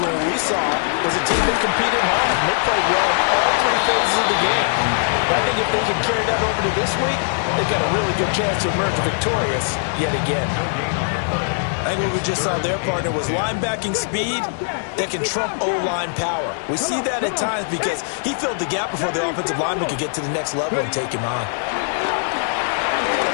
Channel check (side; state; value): right; silent; digital silence